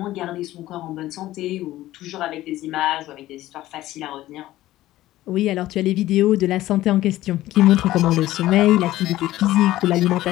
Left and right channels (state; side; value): quieter; right; 15.4 dB